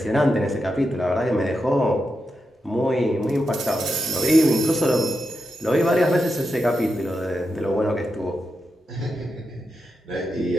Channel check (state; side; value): normal; both; correlation 0.87